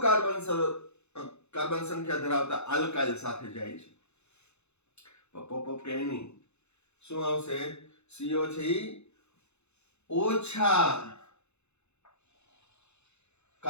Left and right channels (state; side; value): late; right; 0.81 ms